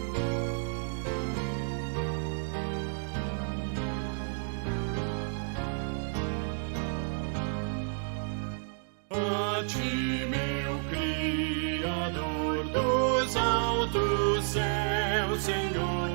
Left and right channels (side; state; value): left; silent; 56 dB below the other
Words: A ti, meu Criador dos altos céus,